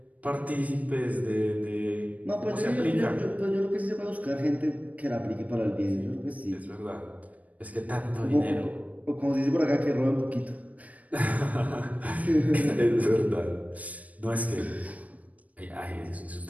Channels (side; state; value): left; late; 0.071 ms